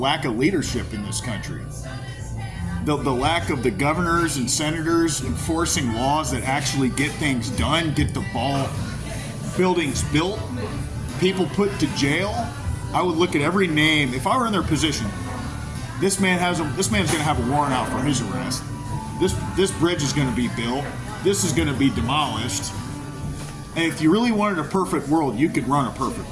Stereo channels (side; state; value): both; identical; correlation 1.00